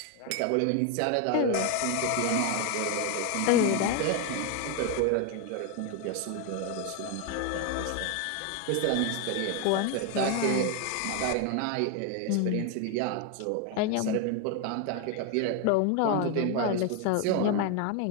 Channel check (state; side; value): different; both; correlation 0.01